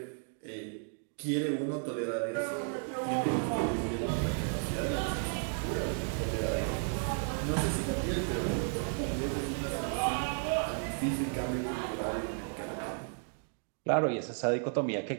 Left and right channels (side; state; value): left; silent; 55 dB below the other